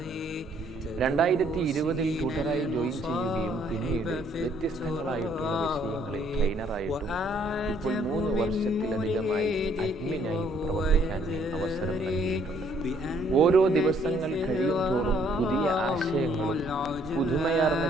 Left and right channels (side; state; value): both; normal; correlation 0.65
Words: 2020 ട്യൂട്ടറായി ജോയിൻ ചെയ്യുകയും പിന്നീട് വ്യത്യസ്തങ്ങളായിട്ടുള്ള വിഷയങ്ങളിൽ ട്രെയിനറായിട്ടും ഇപ്പോൾ 3 വർഷത്തിലധികമായി അഡ്മിനായും പ്രവർത്തിക്കാൻ അവസരം നൽകിയിട്ടുണ്ട്. ഓരോ ദിവസങ്ങൾ കഴിയും തോറും പുതിയ ആശയങ്ങളും പുതുമയാർന്ന